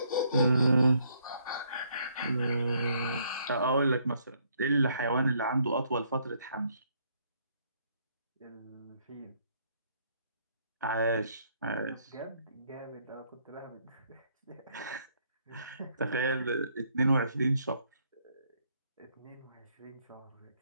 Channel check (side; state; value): both; inverted; correlation -0.69